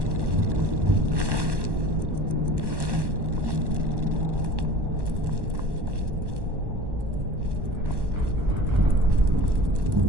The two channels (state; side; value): late; left; 1.1 ms